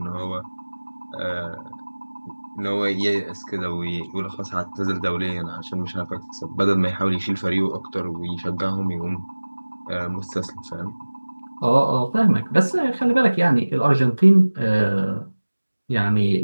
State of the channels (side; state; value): both; inverted; correlation -1.00